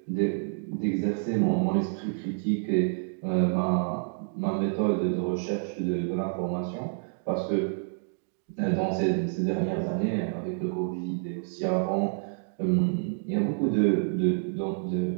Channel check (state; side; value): silent; left; digital silence